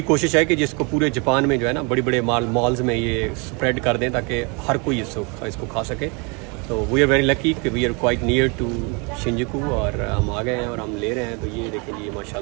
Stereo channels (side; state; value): left; quieter; 31.5 dB